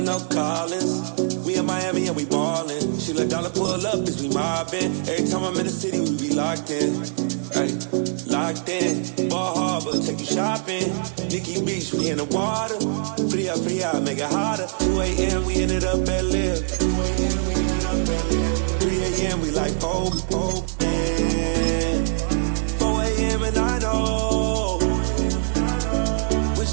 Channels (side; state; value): left; silent; digital silence